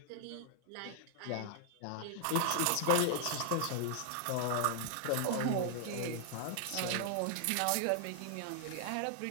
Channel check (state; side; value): different; both; correlation 0.00